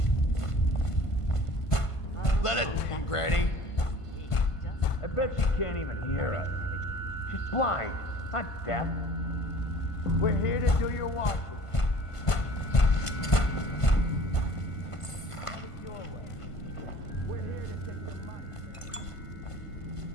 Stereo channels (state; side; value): late; right; 1.5 ms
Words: Let it, Granny. I bet she can't even hear us. She's blind, not deaf. We're here to do your washing. Have it your way. We're here to take your money.